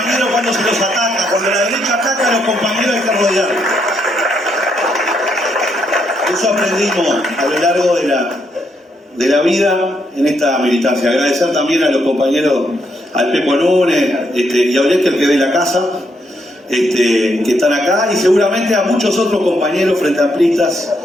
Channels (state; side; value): normal; both; correlation 0.76